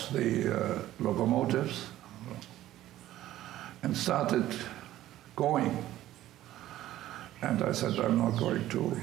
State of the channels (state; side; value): quieter; left; 14.1 dB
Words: the locomotives, and started going. And I said, I'm not going to